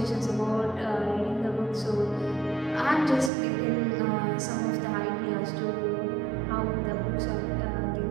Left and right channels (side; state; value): left; drops out; at 3.3 s